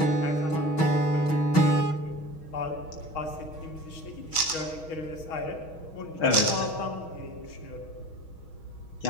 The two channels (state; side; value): late; right; 6.3 ms